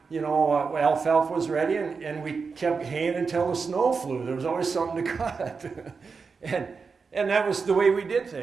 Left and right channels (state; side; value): quieter; left; 5.0 dB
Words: alfalfa was ready and we kept haying until the snow flew. There was always something to cut. and that was the way we did